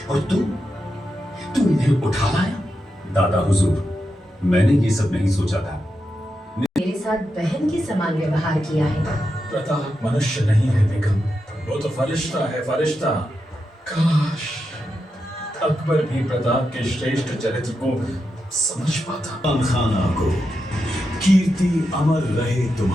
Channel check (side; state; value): both; normal; correlation 0.87